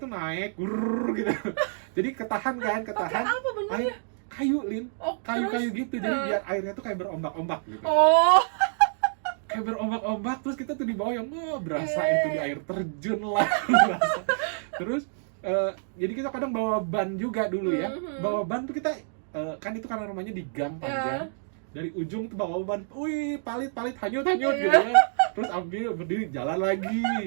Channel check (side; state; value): left; silent; digital silence